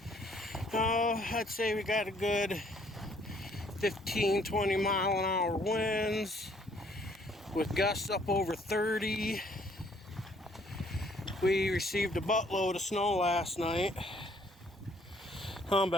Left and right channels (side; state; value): both; normal; correlation 0.63